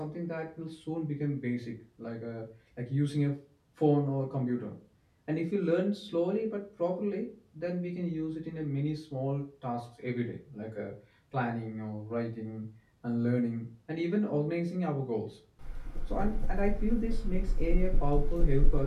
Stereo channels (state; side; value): identical; both; correlation 1.00